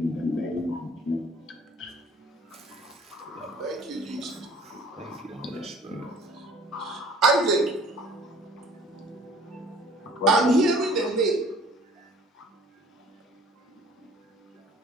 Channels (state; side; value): normal; both; correlation 0.53